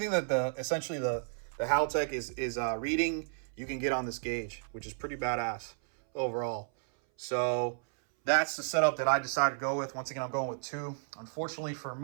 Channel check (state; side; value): silent; left; 56 dB below the other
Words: that essentially the Haltech is reading, you can get on this gauge, which is pretty badass overall. So that's the setup that I decided to go with. Once again, I'm going with 2. Unfortunately for